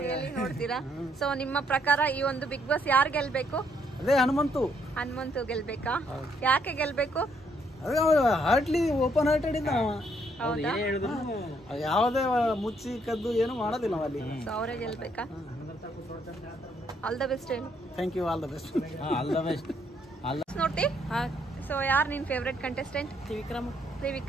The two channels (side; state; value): both; normal; correlation 0.71